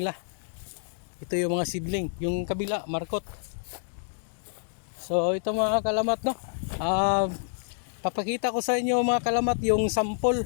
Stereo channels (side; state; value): right; silent; digital silence